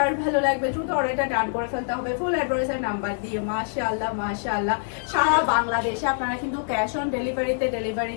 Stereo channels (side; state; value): right; silent; 62 dB below the other